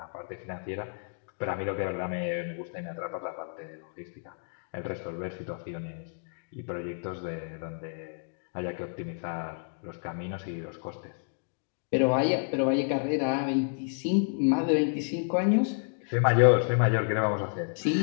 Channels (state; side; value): silent; right; digital silence